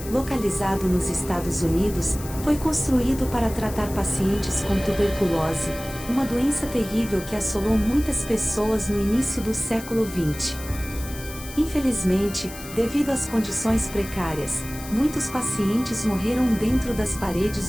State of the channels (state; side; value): noise; left; hiss, 14 dB below the sound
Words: localizado nos Estados Unidos, foi construído para tratar pacientes com tuberculose, uma doença terrível que assolou muitas pessoas no início do século XX. Infelizmente, devido às condições precárias, muitos pacientes morreram dentro das